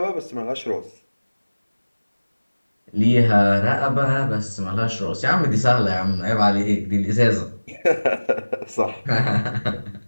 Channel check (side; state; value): both; inverted; correlation -1.00